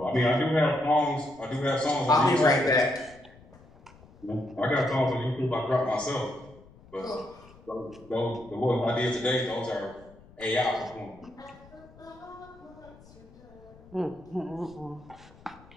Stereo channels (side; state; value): left; noise; rumble, 24 dB below the sound